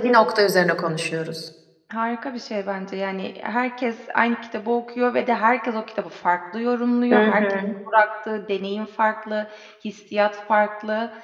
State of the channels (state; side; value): identical; both; correlation 1.00